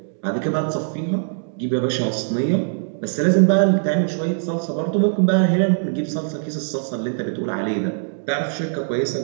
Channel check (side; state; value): left; silent; digital silence